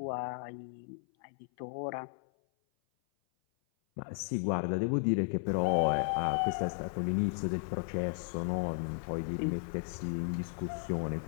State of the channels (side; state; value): right; silent; 55 dB below the other